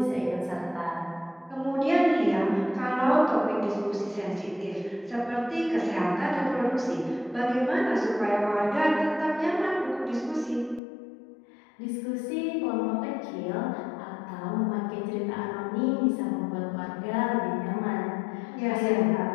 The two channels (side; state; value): right; drops out; at 10.8 s